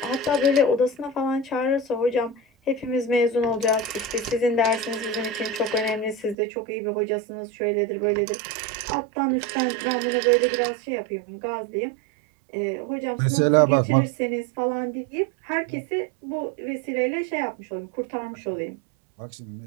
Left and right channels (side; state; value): left; drops out; at 6.4 s